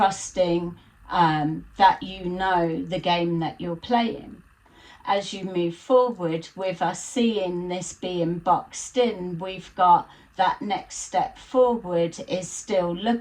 that you know the game that you're playing. As you move forward, with us seeing this being boxed in, we've got that next step forward is still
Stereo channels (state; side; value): identical; both; correlation 1.00